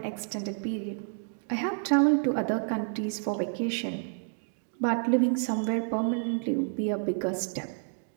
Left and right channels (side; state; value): left; silent; 58 dB below the other